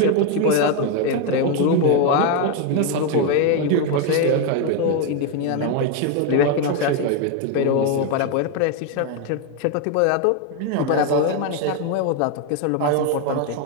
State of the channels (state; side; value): different; both; correlation 0.01